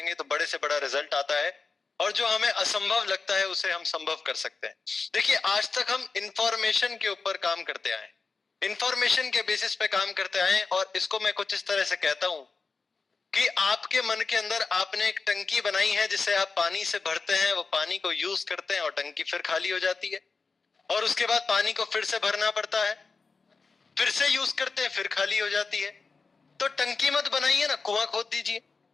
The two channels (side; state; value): right; quieter; 4.4 dB